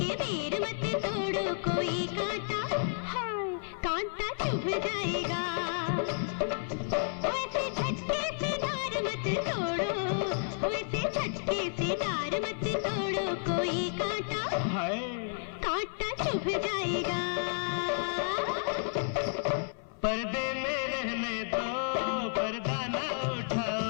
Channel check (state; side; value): silent; right; 57 dB below the other